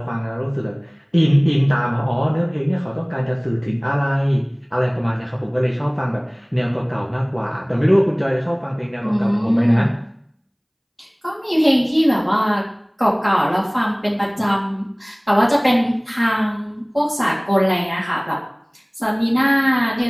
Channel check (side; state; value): both; identical; correlation 1.00